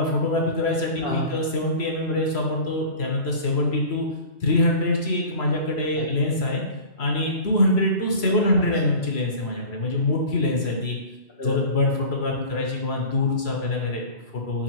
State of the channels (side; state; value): right; late; 3.0 ms